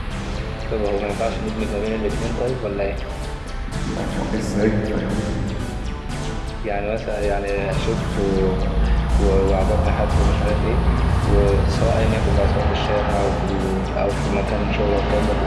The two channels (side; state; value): both; identical; correlation 1.00